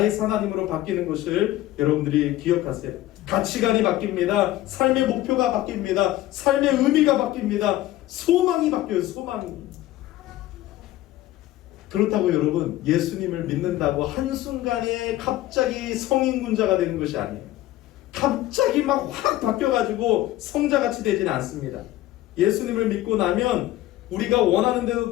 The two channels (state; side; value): quieter; right; 15.3 dB